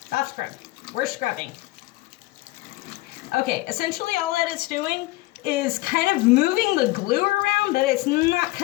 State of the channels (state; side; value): quieter; right; 20.0 dB